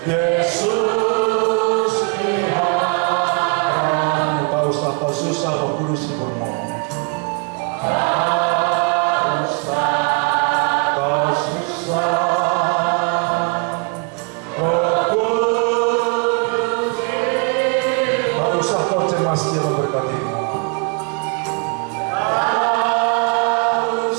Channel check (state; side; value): quieter; left; 35.9 dB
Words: Yesus peliharamu. Tak usah kau susah, Roh Kudus hiburmu. Tak usah kau susah, Roh Kudus. Tak usah kau cemas, Dia memberkatimu. Tak